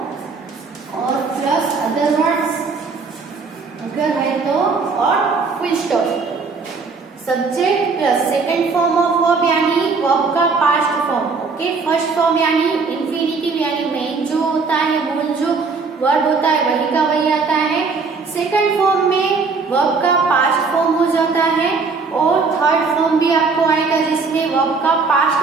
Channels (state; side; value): quieter; left; 4.6 dB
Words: और प्लस अदर वर्ड्स अगर है तो, और full stop. Subject plus second form of verb यानी वर्ब का past form. Okay, first form यानी इंफिनिटिव यानी मेन जो होता है मूल जो वर्ब होता है वही का वही आता है। सेकंड फॉर्म में वर्ब का पास्ट फॉर्म हो जाता है और थर्ड फॉर्म भी आपको आएगा जिसमें वर्ब का